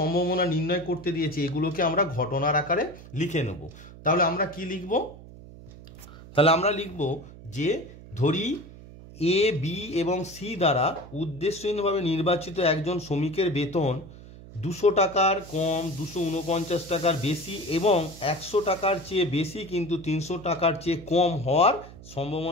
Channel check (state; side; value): noise; right; hum, 17 dB below the sound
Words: নির্ণয় করতে দিয়েছে এগুলোকে আমরা ঘটনার আকারে লিখে নেব। তাহলে আমরা কি লিখব, তাহলে আমরা লিখব যে ধরি এ বি এবং সি দ্বারা উদ্দেশ্যহীনভাবে নির্বাচিত একজন শ্রমিকের বেতন 200 টাকার কম 249 টাকার বেশি এবং 100 টাকার চেয়ে বেশি কিন্তু 300 টাকার চেয়ে কম হওয়ার